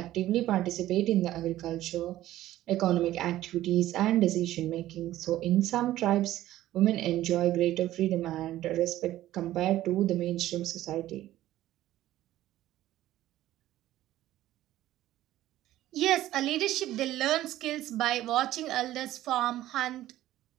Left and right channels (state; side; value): quieter; left; 14.3 dB